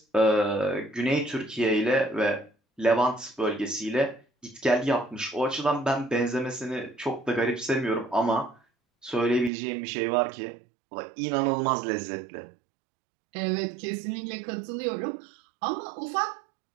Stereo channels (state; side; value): drops out; left; at 9.5 s